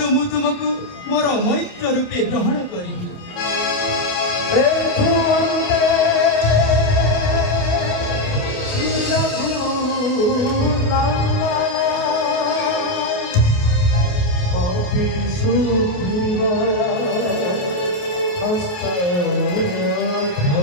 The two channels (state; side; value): late; right; 28 ms